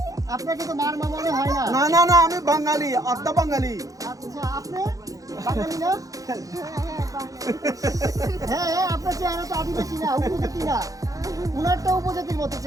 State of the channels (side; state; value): left; late; 0.17 ms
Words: আপনাকে তো মার মনে হয় না। না না না, আমি বাঙালি, আত্মা বাঙালি। আচ্ছা, আপনি বাঙালি না? হ্যাঁ, আপনার চেহারা তো আদিবাসী না, উপজাতি না। উনারটা উপজাতির মতো